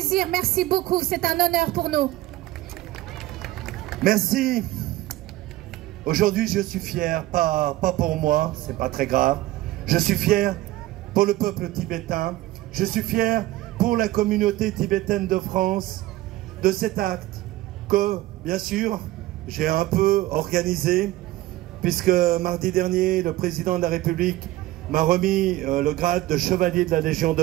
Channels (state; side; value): quieter; left; 17.0 dB